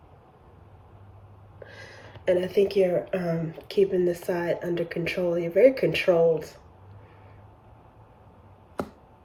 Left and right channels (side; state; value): both; identical; correlation 1.00